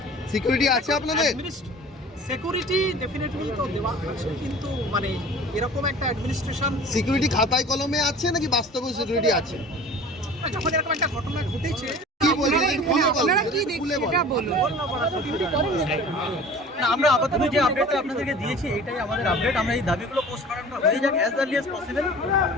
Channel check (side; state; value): both; normal; correlation 0.42